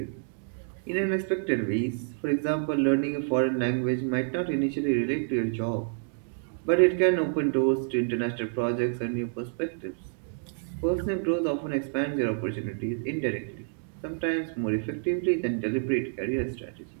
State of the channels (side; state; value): left; silent; digital silence